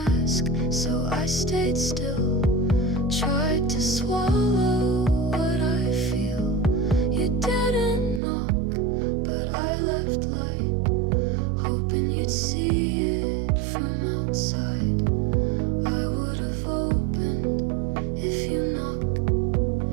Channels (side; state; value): left; drops out; at 8.2 s